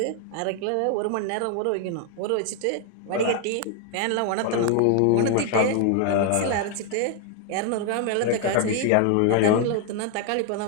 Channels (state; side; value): different; both; correlation 0.00